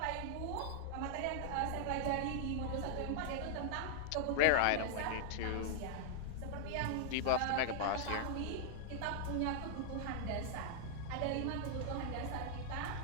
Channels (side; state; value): both; different; correlation 0.00